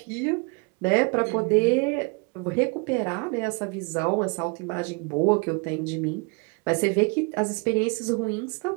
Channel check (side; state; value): left; quieter; 31.3 dB